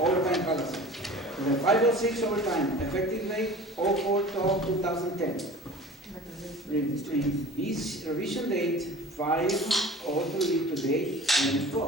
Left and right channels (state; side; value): normal; both; correlation 0.41